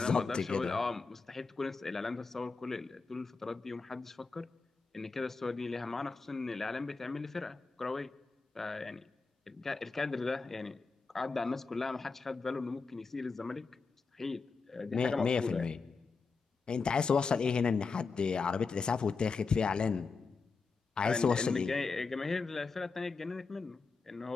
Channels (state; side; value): quieter; right; 4.6 dB